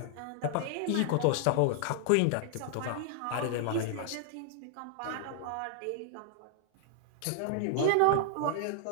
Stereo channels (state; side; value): different; both; correlation -0.01